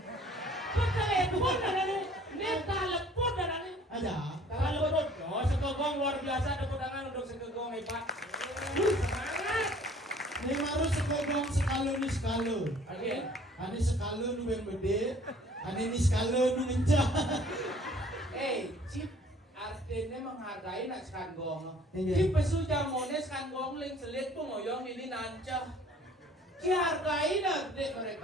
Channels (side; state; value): both; normal; correlation 0.54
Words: Kok telepon Dani? Ini telepon Dani. Ada. Telepon. Oh, sekegong luar biasa tepuk tangan untuk sekegong hebat. Semangat. Ini harus sekogong sekalo ni sekalo. Oke. Ani sekalo nu yang gede. Ani ni sekalo nu ngencah. Cip artinya menghargai nak sekanggong. Iya. Cip pesu jamone sekanggong ling selit pengoyong ini nancah. Dihargai nak dek